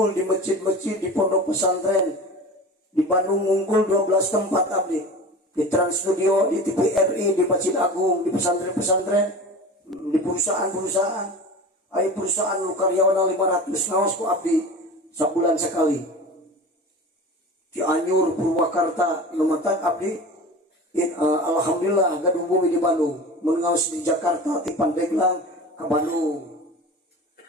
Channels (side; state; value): both; normal; correlation 0.34